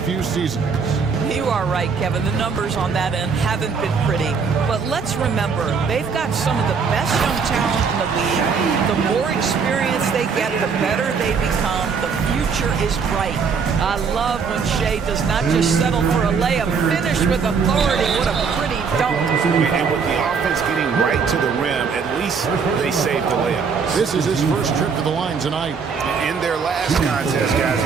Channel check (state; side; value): quieter; left; 5.7 dB